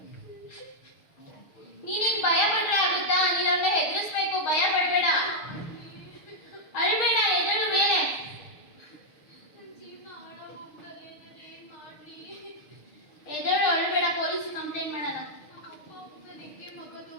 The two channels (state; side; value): late; right; 6.6 ms